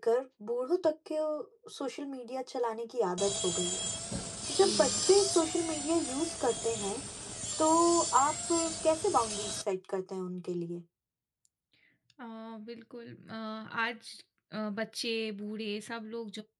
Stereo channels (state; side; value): identical; both; correlation 1.00